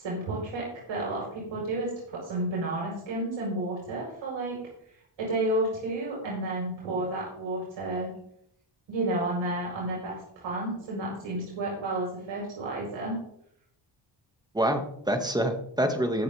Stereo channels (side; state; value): both; normal; correlation 0.13